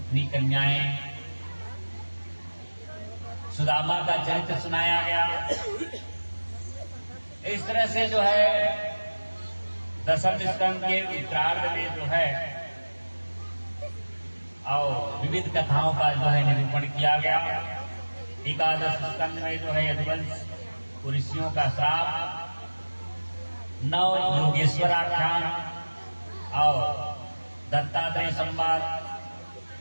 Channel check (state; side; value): inverted; both; correlation -1.00